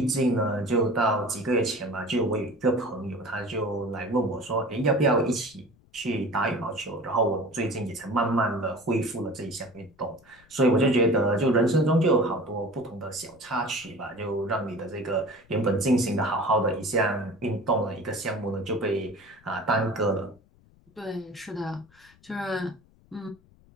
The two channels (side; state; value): left; noise; rumble, 29 dB below the sound